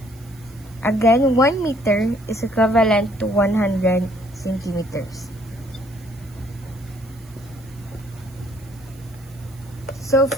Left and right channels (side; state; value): right; noise; hiss, 27 dB below the sound